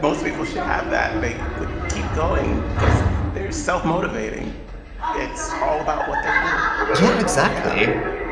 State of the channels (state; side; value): identical; both; correlation 1.00